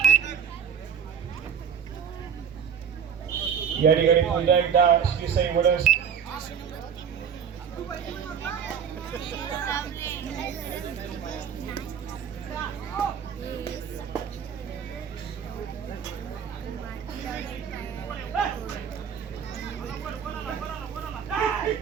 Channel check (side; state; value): left; quieter; 7.5 dB